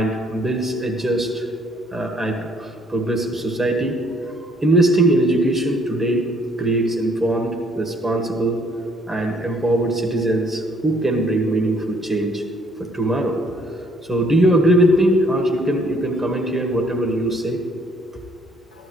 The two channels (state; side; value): normal; both; correlation 0.63